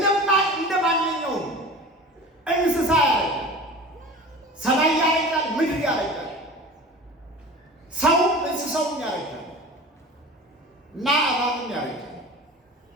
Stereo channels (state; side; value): normal; both; correlation 0.37